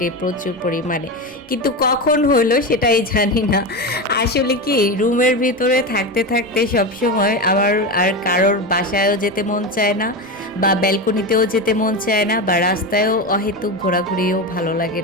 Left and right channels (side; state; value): right; noise; rumble, 28 dB below the sound